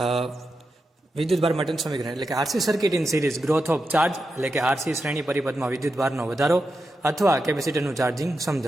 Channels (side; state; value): both; normal; correlation 0.88